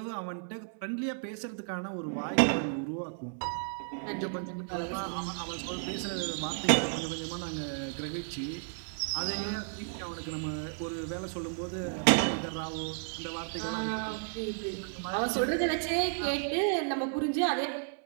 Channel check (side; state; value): left; silent; 56 dB below the other